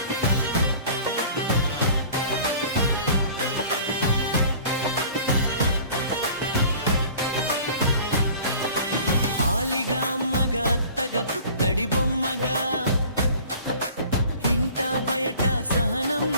ఆలిగా అమ్మగా అత్తగా పుత్తడి బొమ్మగా ఇంట బయట సహనం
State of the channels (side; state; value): both; inverted; correlation -0.46